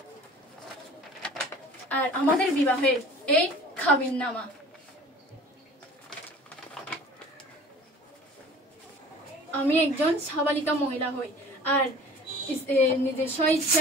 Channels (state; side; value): normal; both; correlation 0.45